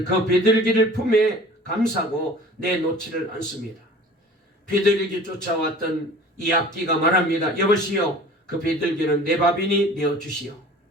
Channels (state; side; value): normal; both; correlation 0.45